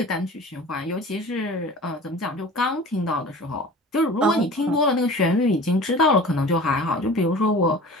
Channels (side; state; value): both; normal; correlation 0.40